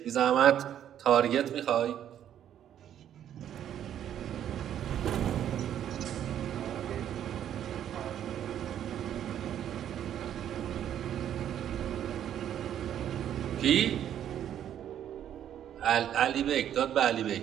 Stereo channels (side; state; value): left; quieter; 10.3 dB